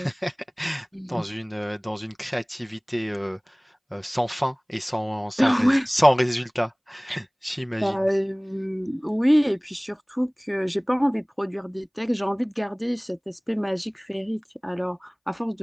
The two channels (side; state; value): both; identical; correlation 1.00